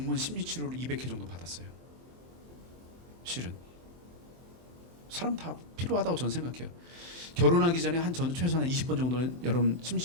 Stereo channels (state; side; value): late; left; 23 ms